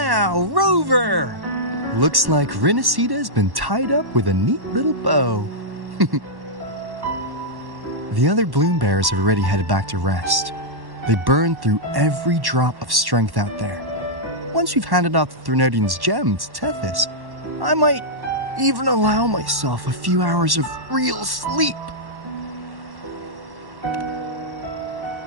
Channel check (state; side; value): late; left; 1.1 ms